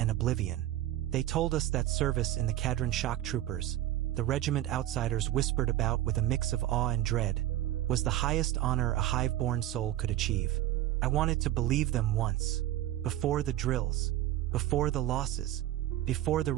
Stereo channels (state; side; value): quieter; left; 13.8 dB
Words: oblivion. They told us that service in the Cadian shock troopers, the regiment outsiders whispered about with a mix of awe and dread, was the highest honor a hive-born soul could achieve. I wanted to believe them once, before the drills, before the losses, before the